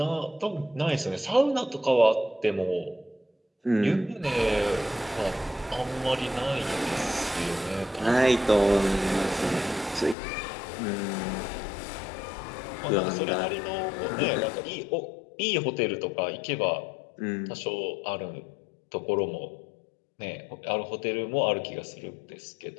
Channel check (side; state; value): right; drops out; at 10.2 s